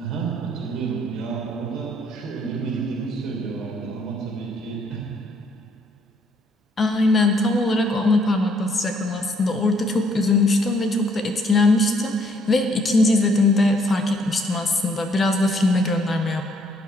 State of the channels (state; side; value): normal; both; correlation 0.66